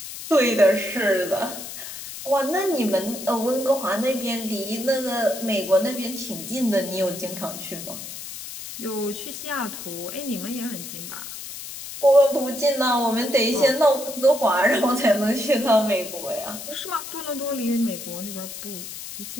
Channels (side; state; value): left; noise; hiss, 10 dB below the sound